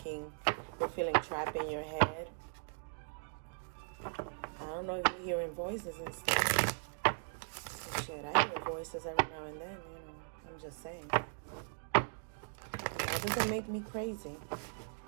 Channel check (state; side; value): silent; left; digital silence